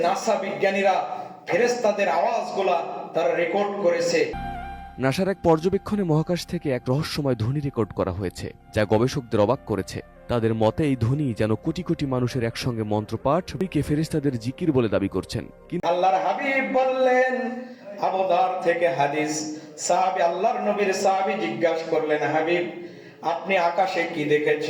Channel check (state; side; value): identical; both; correlation 1.00